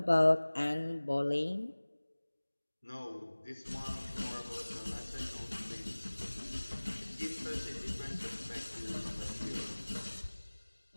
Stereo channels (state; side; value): inverted; both; correlation -1.00